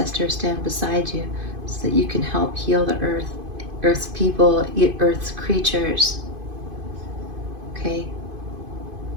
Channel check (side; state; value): left; late; 2.5 ms